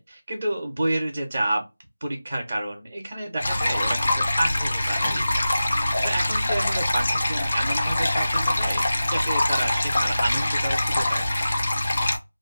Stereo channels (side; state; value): both; inverted; correlation -0.94